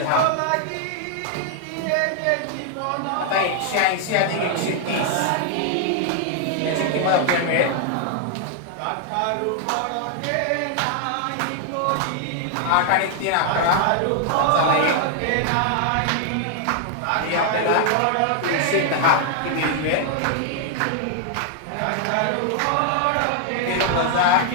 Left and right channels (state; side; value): different; both; correlation 0.00